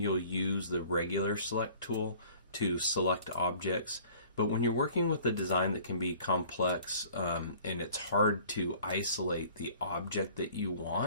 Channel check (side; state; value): both; inverted; correlation -0.51